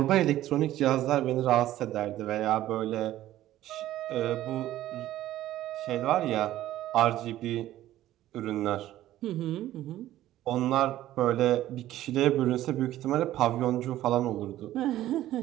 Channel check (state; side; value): quieter; left; 14.0 dB